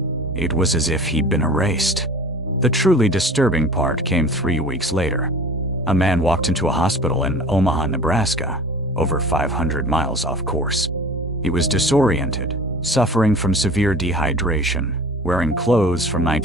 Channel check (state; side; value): normal; both; correlation 0.41